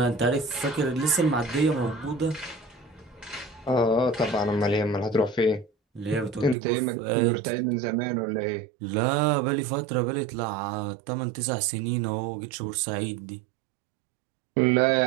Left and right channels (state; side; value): drops out; left; at 6.6 s